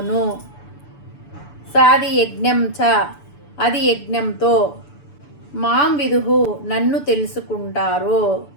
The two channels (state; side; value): late; right; 6.9 ms